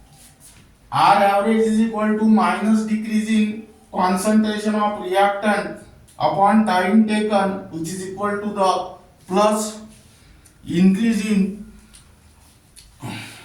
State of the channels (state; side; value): identical; both; correlation 1.00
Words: R average is equal to minus decreasing concentration of reactant upon time taken, which is equal to the plus increasing